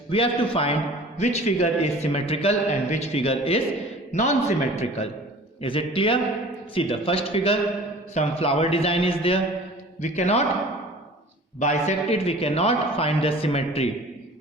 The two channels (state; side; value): normal; both; correlation 0.44